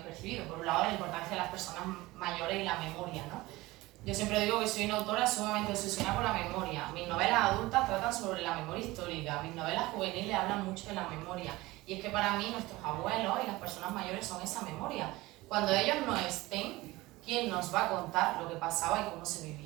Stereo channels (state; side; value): quieter; left; 19.8 dB